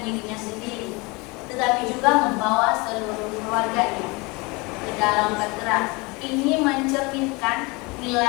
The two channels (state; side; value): quieter; right; 26.4 dB